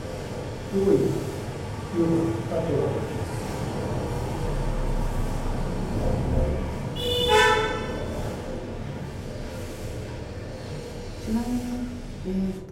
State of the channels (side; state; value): both; identical; correlation 1.00